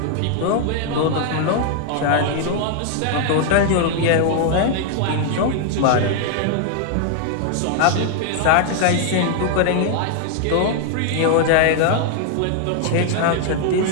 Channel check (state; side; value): different; both; correlation 0.00